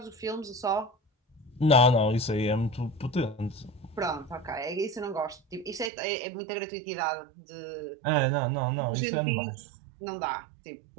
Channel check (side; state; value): left; drops out; at 5.9 s